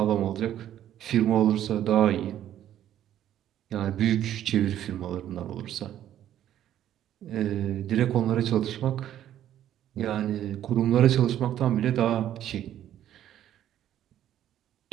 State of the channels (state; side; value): quieter; left; 11.5 dB